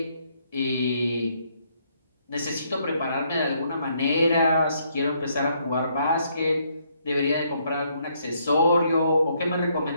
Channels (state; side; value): inverted; both; correlation -0.71